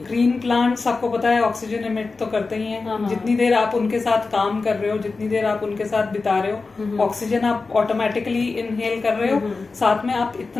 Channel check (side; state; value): right; quieter; 4.0 dB